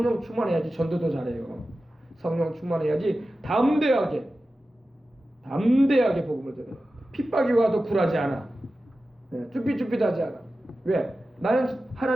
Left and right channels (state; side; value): normal; both; correlation 0.94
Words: 충만해야지 전도도 잘해요. 성령 충만해야지 담대하게 복음을 전해요. 핍박이 와도 굴하지 않아. 쭈삣쭈삣하지 않아. 왜? 나는